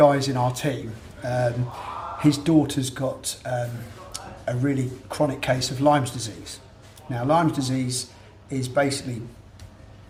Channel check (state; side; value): identical; both; correlation 1.00